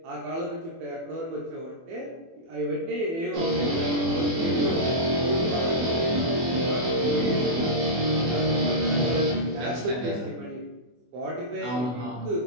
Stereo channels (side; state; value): left; late; 24 ms